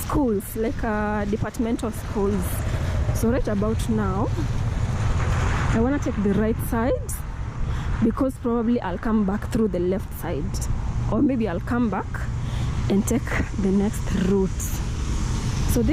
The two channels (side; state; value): both; identical; correlation 1.00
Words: like departmental schools. So right about now, I want to take the right side because probably I'll come back through the left side, or maybe I'll come back and take the next route. So